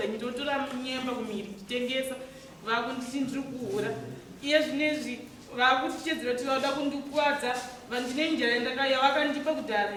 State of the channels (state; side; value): identical; both; correlation 1.00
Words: ndinotora nyemba kumiri nditengesa vakunditi ndiri kuhura iye zvinezvi vakutichedzera kuti vauda kundikuwadza vandine njira yandakaya vakandipa kudhara